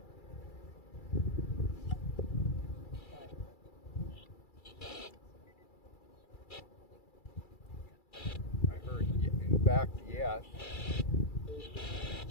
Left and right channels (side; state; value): right; late; 2.3 ms